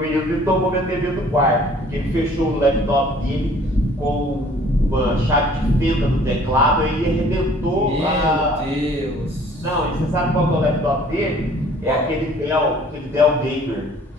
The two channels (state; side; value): normal; both; correlation 0.54